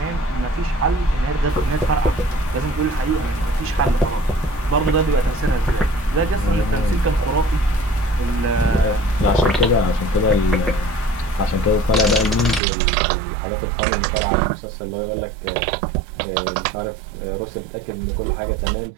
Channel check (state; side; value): drops out; left; at 12.6 s